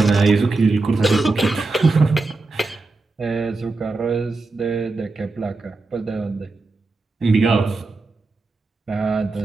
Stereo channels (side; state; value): left; quieter; 3.5 dB